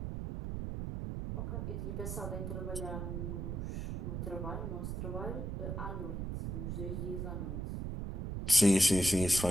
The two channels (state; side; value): noise; right; rumble, 4 dB below the sound